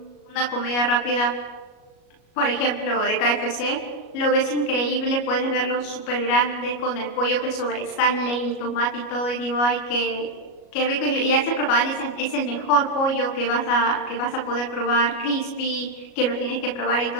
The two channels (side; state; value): right; late; 37 ms